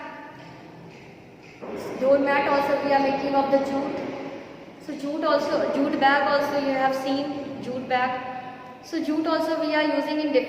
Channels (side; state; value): both; identical; correlation 1.00